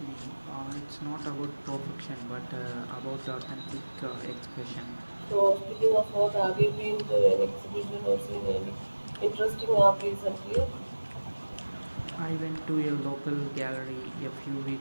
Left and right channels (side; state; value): both; inverted; correlation -1.00